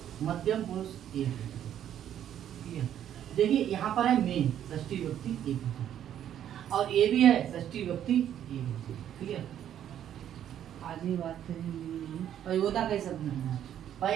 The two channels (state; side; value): quieter; left; 10.4 dB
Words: मध्यम पुरुष एक, देखिए यहाँ पर है मेन षष्ठी विभक्ति एक, और ये भी है षष्ठी विभक्ति एक, ठीक है। आज ही बात करेंगे पयोदा के शब्द में,